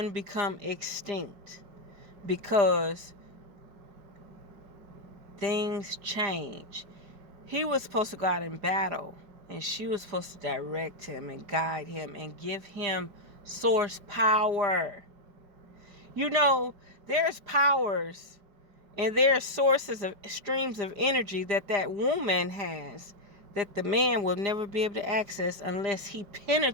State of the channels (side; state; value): left; late; 5.0 ms